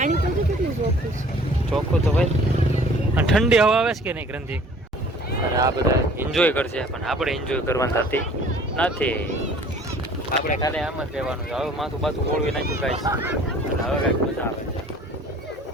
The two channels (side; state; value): both; normal; correlation 0.52